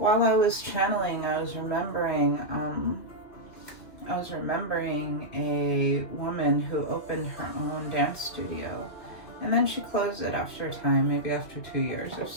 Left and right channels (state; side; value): late; right; 2.7 ms